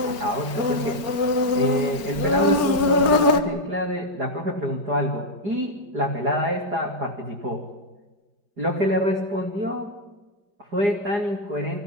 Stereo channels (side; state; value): left; late; 5.0 ms